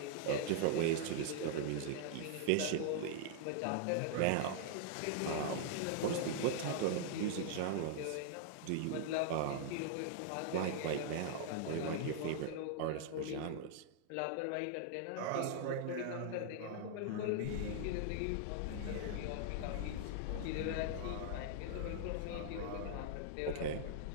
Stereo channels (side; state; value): both; different; correlation -0.01